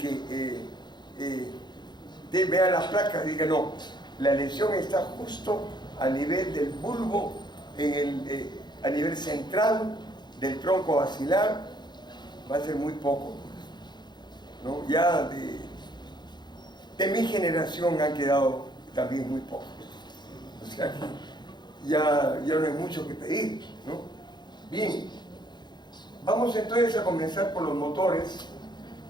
vean las placas y digan, no, la lesión está justo a nivel del bulbo, a nivel central del tronco basilar? Va a ser muy poco, ¿no? Ya de mi generación han quedado también muy pocos. O sea que ya no hay mucho que pedir, ¿no? Bien, vamos entonces a comenzar por los motores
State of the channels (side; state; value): right; late; 0.21 ms